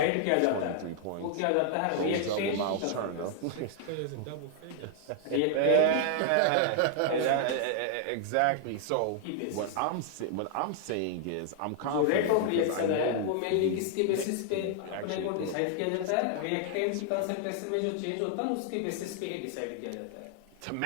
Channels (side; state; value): both; different; correlation 0.00